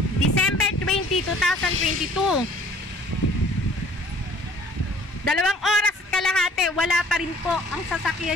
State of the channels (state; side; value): normal; both; correlation 0.54